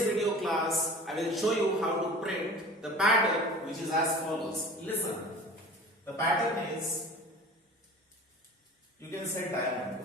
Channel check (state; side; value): normal; both; correlation 0.40